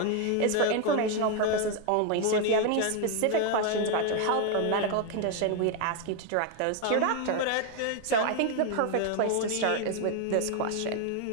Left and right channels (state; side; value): different; both; correlation 0.01